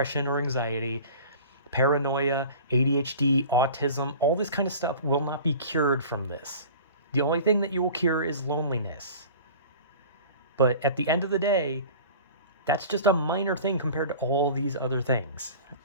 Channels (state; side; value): inverted; both; correlation -0.40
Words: or anxiety. Paranoia, ADHD, autism, all this kind of stuff will not be cured from this. The only thing that you will cure is loneliness. But at the end of the day, that's just a minor thing compared to all these other things.